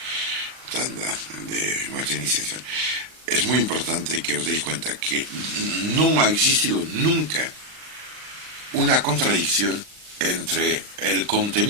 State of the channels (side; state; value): left; late; 39 ms